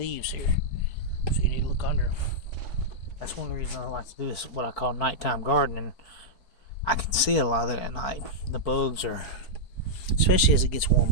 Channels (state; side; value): late; right; 4.5 ms